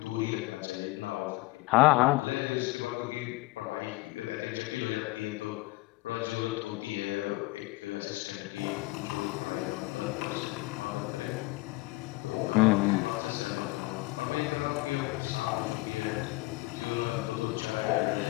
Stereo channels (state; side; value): quieter; right; 21.5 dB